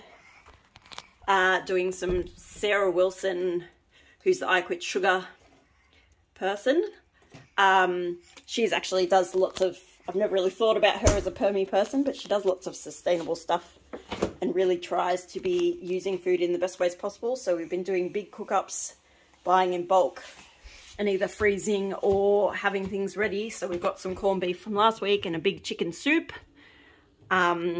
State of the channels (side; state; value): both; identical; correlation 1.00